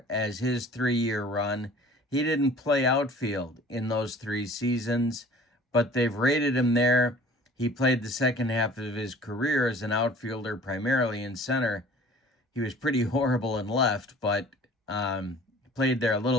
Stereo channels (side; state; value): both; normal; correlation 0.49